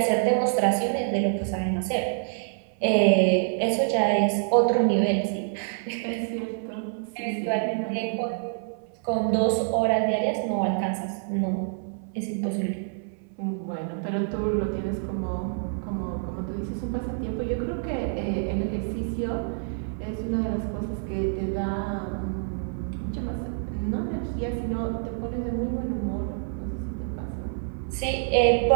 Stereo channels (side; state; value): left; silent; 60 dB below the other